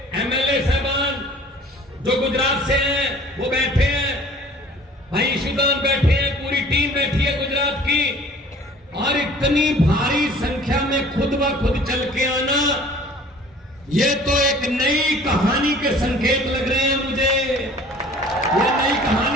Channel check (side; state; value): both; normal; correlation 0.49